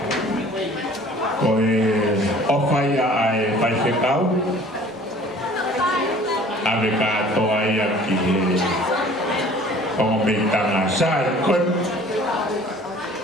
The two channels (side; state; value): both; normal; correlation 0.50